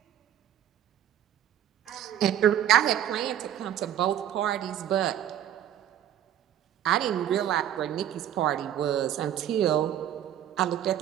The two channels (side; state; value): left; quieter; 11.0 dB